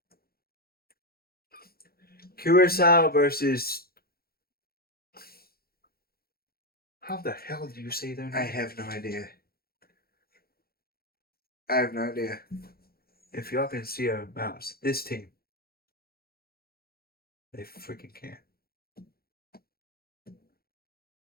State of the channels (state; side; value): late; right; 0.44 ms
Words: Curacao versus. How the hell do you say their name? I have no idea. I have no idea. If y'all can see our mouse, this team. They freaking can't.